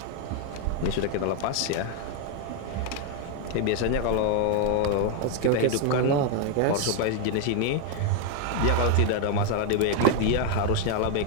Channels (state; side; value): different; both; correlation 0.01